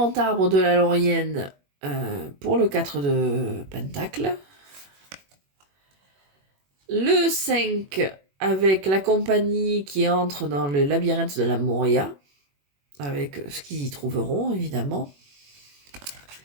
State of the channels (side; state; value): left; late; 21 ms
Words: arbre de la Laurienne pour le 4 de pentacle. Le 5 avec la compagnie qui entre dans le labyrinthe de la Moria, avec ce qu'ils y trouveront, évidemment.